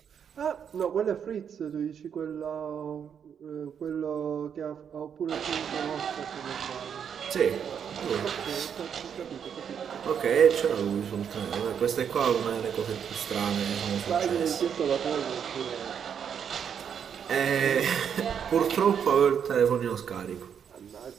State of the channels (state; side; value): quieter; left; 7.8 dB